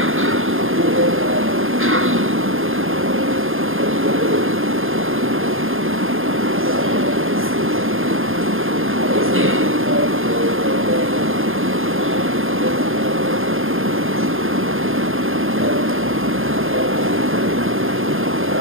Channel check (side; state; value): left; late; 0.60 ms